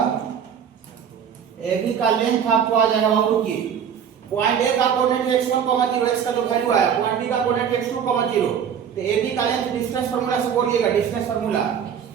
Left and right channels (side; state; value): left; quieter; 8.0 dB